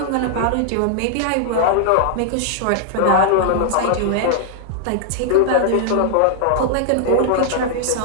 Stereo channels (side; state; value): both; different; correlation -0.01